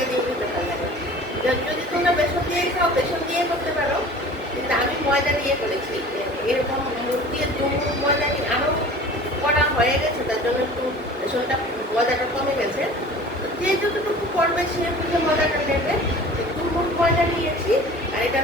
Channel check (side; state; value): both; normal; correlation 0.43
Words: দিয়ে খেতে ভালো লাগে। যদি তোমরা বেসন দিয়ে খাও বেসন দিয়ে করতে পারো, কিন্তু আমি ময়দা দিয়ে করেছি। এরকম মুখ দিয়ে 2 মুঠ ময়দা দিয়ে আরও করা হয়ে গেছে, তার জন্য একটু বেসনটা ময়দাটা কমে গেছে। যে যতটুকু করবে সে বুঝে ময়দাটা নেবে। 2 মুঠ ময়দা নিয়েছি, আর